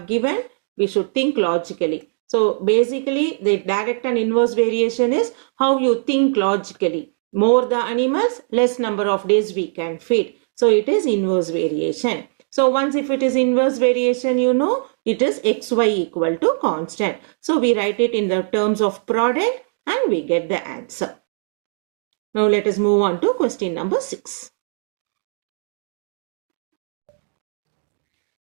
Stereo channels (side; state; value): left; silent; digital silence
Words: given, we should think logically. So, basically the direct and inverse variation is how you think logically. More the animals, less number of days we can feed. So, it is inverse variation. So, once if it is inverse variation, you know, it is xy equal to constant. So, we write it in the terms of product and we get the answer. Now, let us move on to question number 6.